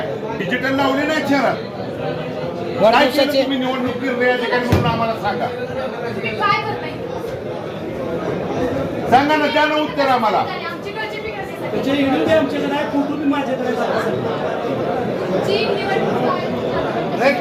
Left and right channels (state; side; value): identical; both; correlation 1.00